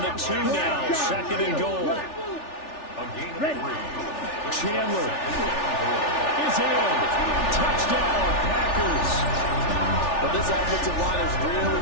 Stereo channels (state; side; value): late; right; 3.4 ms